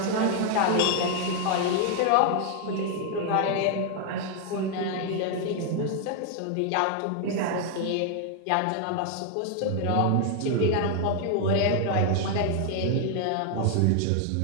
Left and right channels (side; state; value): both; different; correlation 0.00